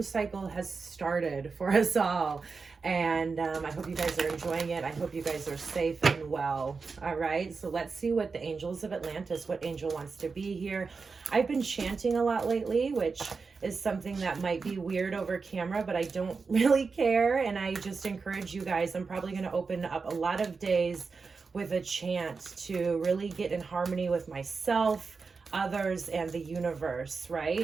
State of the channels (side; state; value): left; quieter; 4.7 dB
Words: cycle has started for us all. And I hope you guys are enjoying it. I hope you guys are safe and well. All right, so let's see what the angels of Atlantis, what angel wants to be here. I've been chanting a lot lately, which is something that might be weird over camera, but I don't really care. And I just encourage you guys, I'm probably going to open up a lot of days with a chant to really get in harmony with myself, others, and the universe,